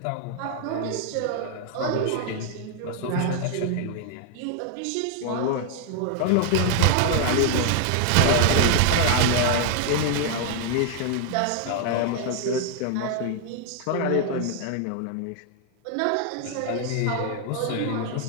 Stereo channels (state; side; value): different; both; correlation 0.00